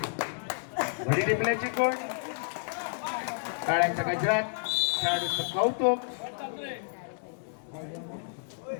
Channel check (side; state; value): right; silent; digital silence